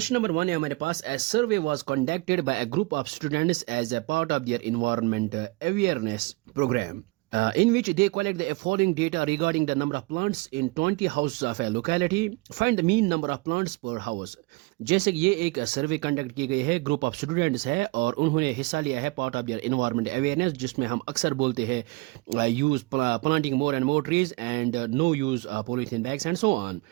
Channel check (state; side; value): quieter; left; 24.6 dB